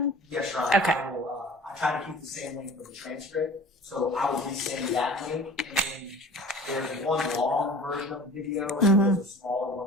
Yes, sure. Okay. I try to keep the same link for the transcript, so I will resend that link. And then there's one long version of the video, and there's a smaller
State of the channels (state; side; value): normal; both; correlation 0.43